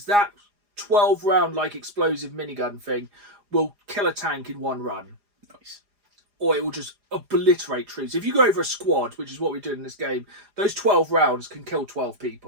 that 12 round like explosive minigun thing will kill a tank in 1 run. Nice. Or it will just obliterate troops. If you go over a squad, which is what we do in this game, those 12 rounds can kill 12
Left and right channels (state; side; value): late; left; 4.9 ms